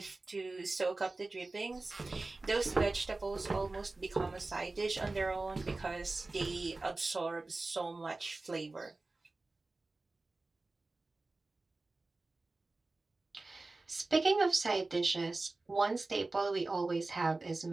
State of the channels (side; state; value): left; quieter; 3.3 dB